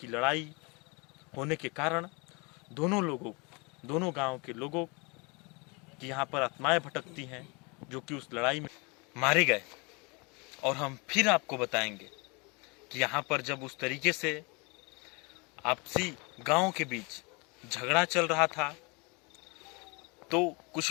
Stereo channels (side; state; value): right; quieter; 29.8 dB